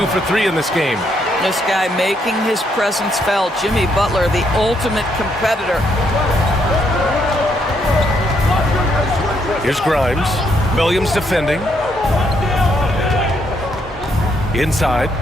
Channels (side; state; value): both; normal; correlation 0.74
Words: for 3 in this game. This guy making his presence felt. Jimmy Butler, the ultimate competitor. Here's Grimes. Williams defending. Inside.